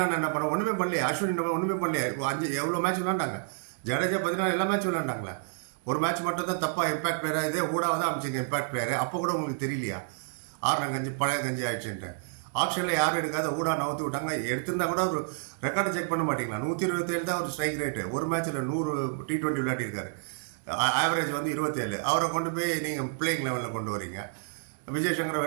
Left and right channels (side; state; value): left; silent; digital silence